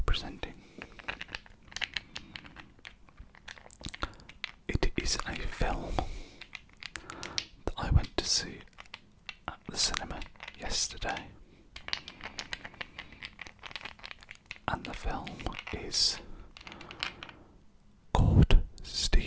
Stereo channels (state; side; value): identical; both; correlation 1.00